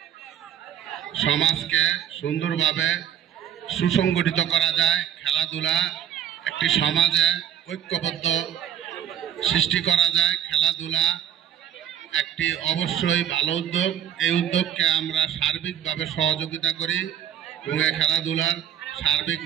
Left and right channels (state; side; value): quieter; left; 9.7 dB